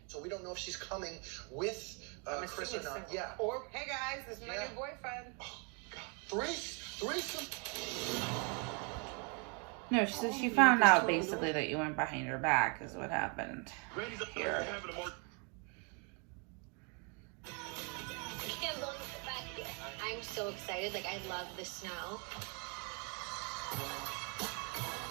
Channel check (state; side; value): quieter; left; 35.6 dB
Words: So we don't know if she's coming with Chris or not. Yeah. Or, hey guys, this is my new boyfriend. Oh, God. Threesome. No, so she found out basically that you went behind her back is what happened here. I can't believe it back here. I'm so excited. Like, I love the snow.